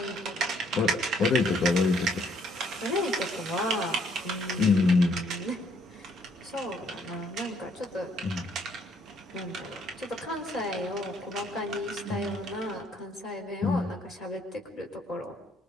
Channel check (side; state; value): both; normal; correlation 0.66